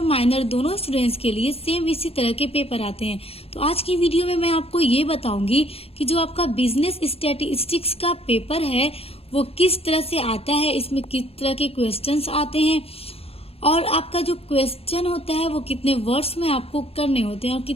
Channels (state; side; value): late; right; 0.28 ms